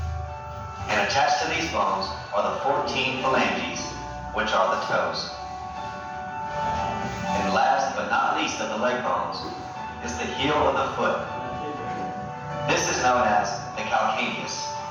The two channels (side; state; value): both; identical; correlation 1.00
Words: And attached to these bones are the 14 phalanges, which are the toes. And last but not least of the leg bones is the heel of the foot. This is known as the calcaneus.